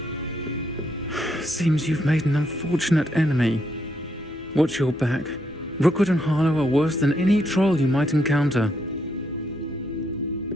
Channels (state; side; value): normal; both; correlation 0.76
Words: Seems you've made an unfortunate enemy. Watch your back. Rookwood and Harlow are worse than any troll you might encounter.